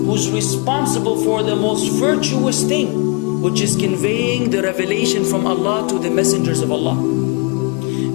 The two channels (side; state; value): right; quieter; 30.4 dB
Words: responsible for the most virtuous thing, which is conveying the revelation from Allah to the messengers of Allah.